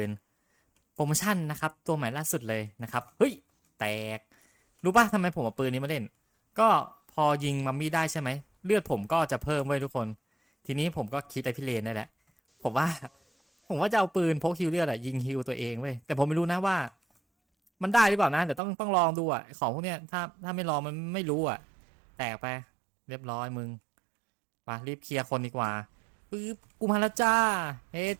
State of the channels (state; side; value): drops out; left; at 18.6 s